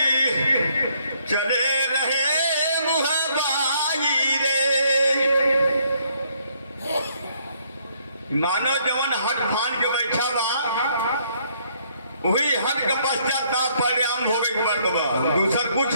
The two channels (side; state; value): both; inverted; correlation -0.68